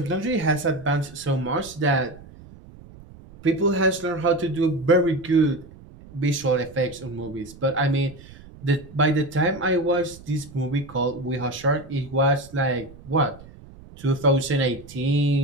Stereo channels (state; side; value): noise; right; rumble, 20 dB below the sound